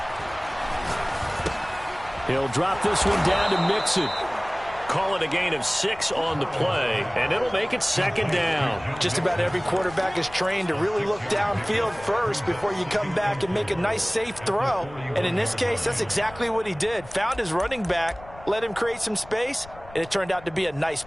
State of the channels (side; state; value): left; noise; rumble, 19 dB below the sound